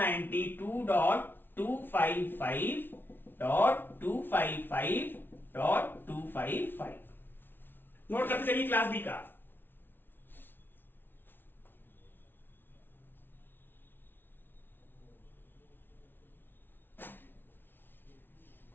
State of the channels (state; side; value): late; right; 0.10 ms